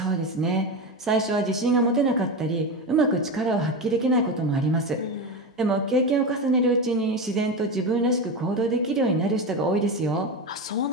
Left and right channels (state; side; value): normal; both; correlation 0.18